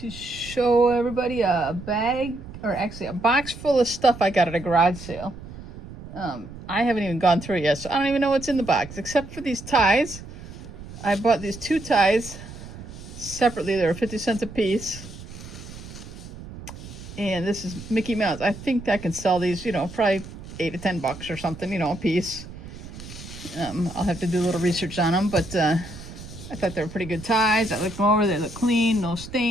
show everybody a bag, or actually a box full of stuff I got at a garage sale. I haven't even gone through it yet, so I don't even know what's in the box except for these ties. I bought these two ties separately. They were 50 cents a piece. And this is Mickey Mouse. I think I can sell these, probably $8 to $10 or something, a piece. I'll have to do a little research on them, but I thought they were pretty good ties. I looked them over, they look clean, no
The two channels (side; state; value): right; noise; rumble, 14 dB below the sound